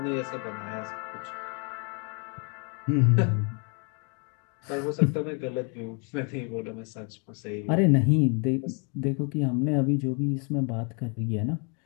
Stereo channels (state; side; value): quieter; right; 36.9 dB